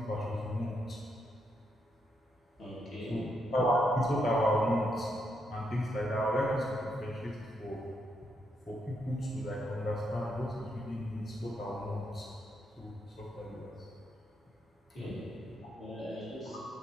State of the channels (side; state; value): both; normal; correlation 0.79